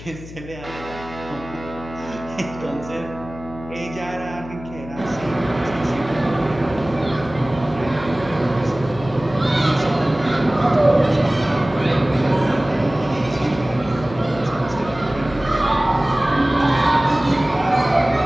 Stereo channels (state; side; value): noise; left; hum, 15 dB below the sound